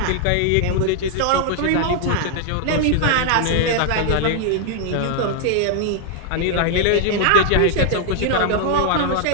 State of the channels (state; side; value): different; both; correlation 0.00